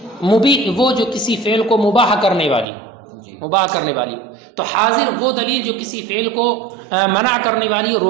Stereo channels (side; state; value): left; drops out; at 2.7 s